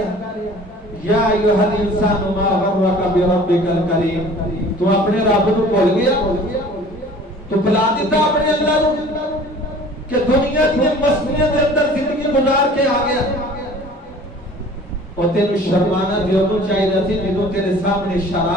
یا ایھا الانسان ما غرک بربک الکریم, تو اپنے رب کو بھول گیا, تو بلا دیتا اپنے اللہ کو کہ دنیا کی مستیاں کے اندر زندگی گزار کے آ گیا. اور تینوں شرمانا دیوں چاہیے سی جنہوں تیرے سامنے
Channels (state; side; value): normal; both; correlation 0.47